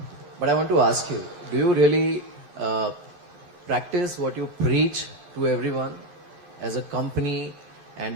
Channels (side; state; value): left; late; 14 ms